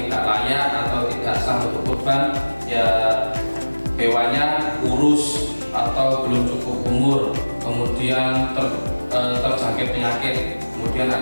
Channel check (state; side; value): inverted; both; correlation -1.00